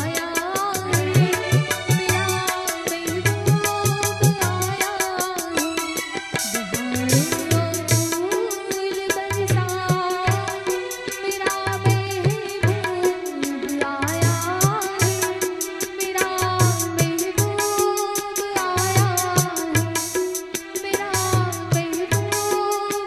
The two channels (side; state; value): both; identical; correlation 1.00